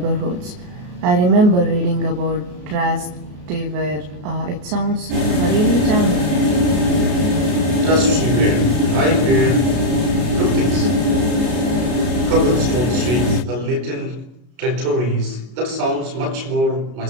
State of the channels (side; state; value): left; late; 33 ms